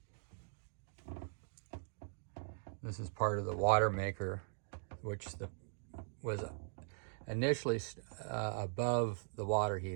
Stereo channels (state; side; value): silent; left; digital silence